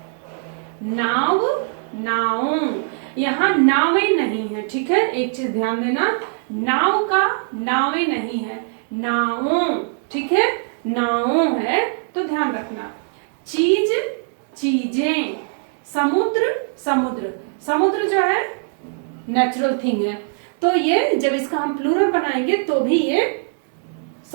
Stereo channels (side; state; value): left; silent; 65 dB below the other